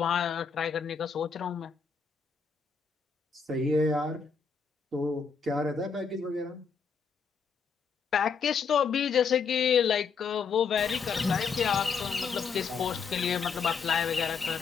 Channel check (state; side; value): quieter; right; 5.7 dB